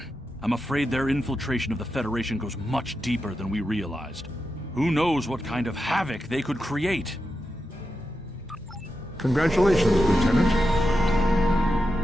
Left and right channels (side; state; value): both; normal; correlation 0.89